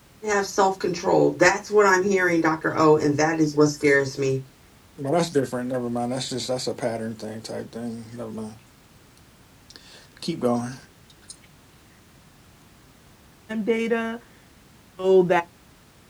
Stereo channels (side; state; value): both; identical; correlation 1.00